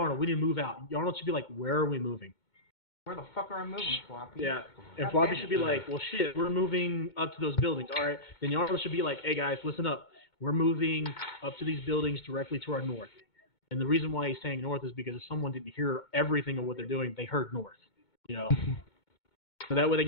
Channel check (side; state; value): right; late; 2.2 ms